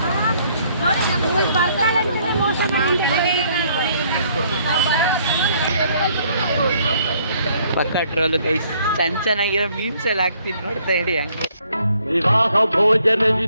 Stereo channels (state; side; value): inverted; both; correlation -0.65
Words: ಪಕ್ಕ ಟ್ರೋಲು ಗೈಸ್. ಚೆನ್ನಾಗಿರೋ ಮೀಮ್ಸ್ ಎಲ್ಲ ಹಾಕ್ತೀನಿ, ನೋಡ್ತಾ ಹೇಳಿ ಹಂಗೆ. ವಿವಾಹ